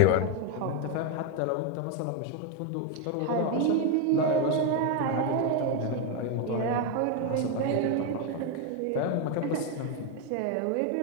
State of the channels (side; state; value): both; different; correlation 0.01